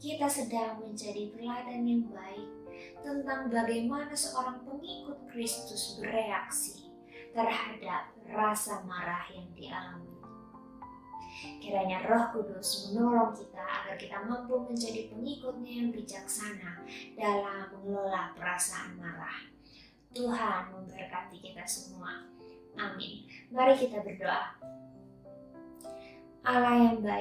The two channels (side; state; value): both; identical; correlation 1.00